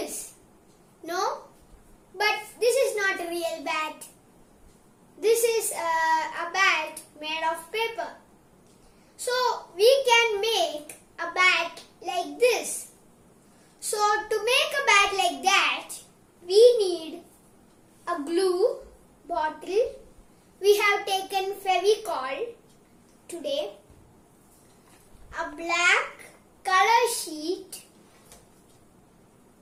No? But this is not a real bat. This is a bat made of paper. So we can make a bat like this. So to make a bat like that, we need a glue bottle. We have taken Fevicol today, a black color sheet,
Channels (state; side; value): identical; both; correlation 1.00